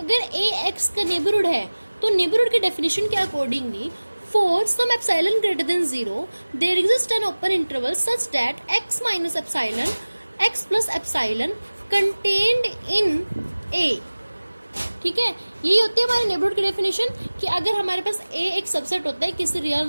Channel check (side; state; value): both; inverted; correlation -1.00